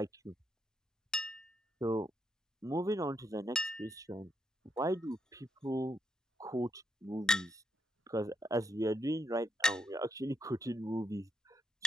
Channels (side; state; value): both; normal; correlation 0.78